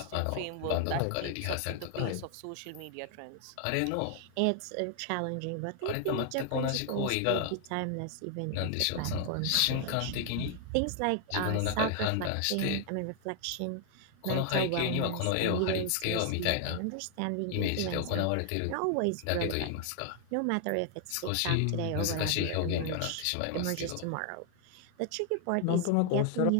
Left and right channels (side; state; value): both; different; correlation 0.00